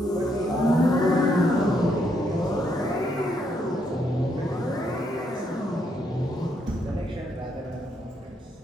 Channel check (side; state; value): both; normal; correlation 0.75